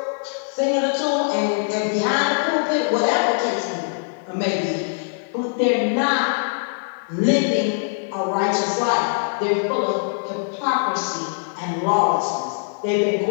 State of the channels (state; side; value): silent; right; digital silence